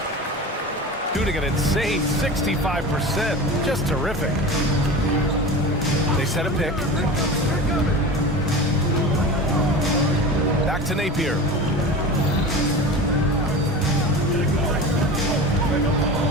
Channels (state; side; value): normal; both; correlation 0.31